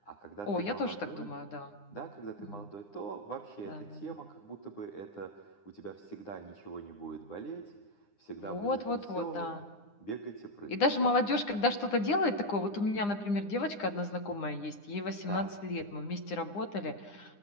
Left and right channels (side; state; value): right; late; 9.8 ms